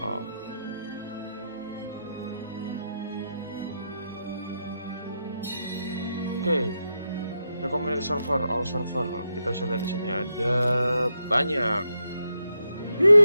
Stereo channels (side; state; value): both; inverted; correlation -0.84